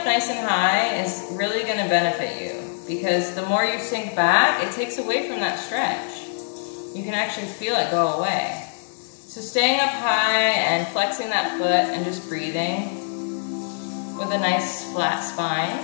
nice and high is really going to benefit you because the more you sink back, it takes away from that stretch. You can actually feel it go away. So staying up high and flexing that foot and just breathing with a nice flat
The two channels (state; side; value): silent; right; digital silence